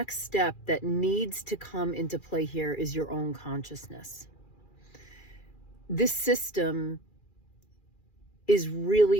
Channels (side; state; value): right; late; 2.4 ms